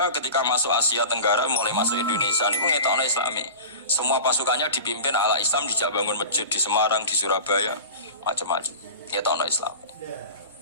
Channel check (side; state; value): both; inverted; correlation -0.33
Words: ketika masuk Asia Tenggara mulai masuk Indonesia niku ngetokno Islami. Semua pasukannya dipimpin ala Islam, dijak bangun masjid di Semarang, di Surabaya, macam-macam. Ngetokno Islami.